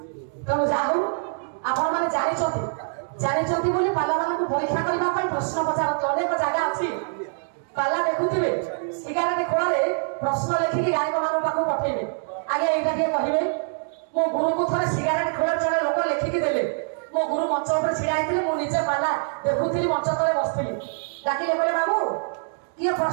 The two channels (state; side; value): silent; left; 62 dB below the other